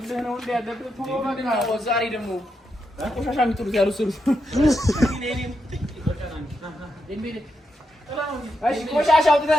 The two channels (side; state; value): both; normal; correlation 0.84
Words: ነው እንደ ያለብህ ቶሎ በቃ ዛሬ ደግሞ ቆሻሻ የሚጥሉት ያሉ ስሩ ቆሻሻ